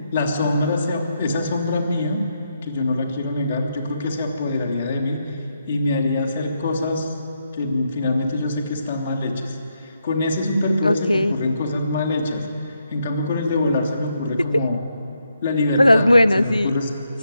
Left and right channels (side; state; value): both; inverted; correlation -0.81